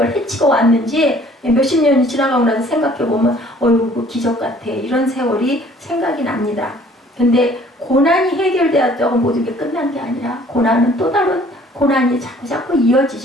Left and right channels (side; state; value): both; normal; correlation 0.55